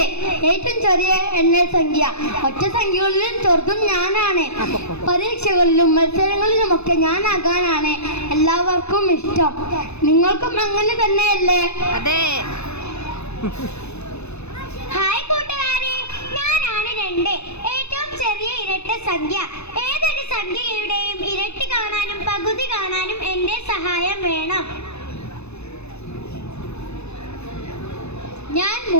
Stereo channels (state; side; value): late; right; 0.80 ms